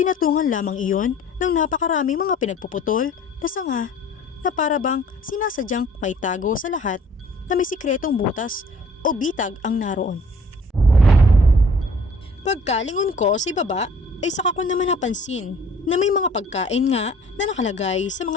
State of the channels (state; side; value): normal; both; correlation 0.53